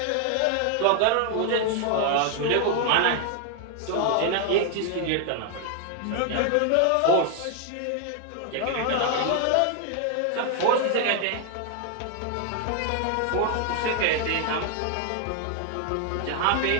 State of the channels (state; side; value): different; both; correlation 0.00